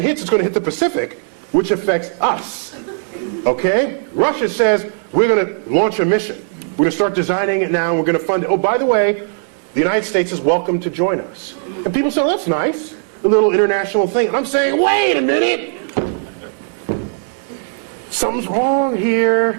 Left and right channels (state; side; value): silent; left; 68 dB below the other